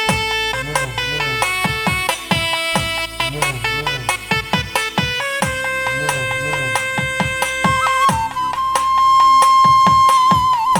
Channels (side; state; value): both; identical; correlation 1.00